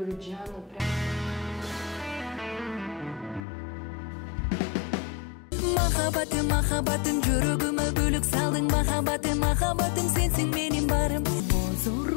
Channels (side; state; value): right; drops out; at 3.5 s